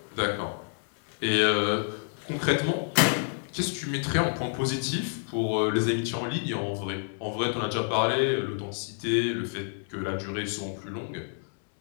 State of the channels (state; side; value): silent; right; 59 dB below the other